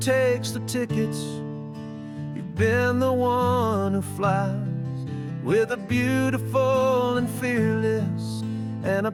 takes the tickets, you've been the one who flies, with a beautiful and fearless and a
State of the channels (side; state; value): both; identical; correlation 1.00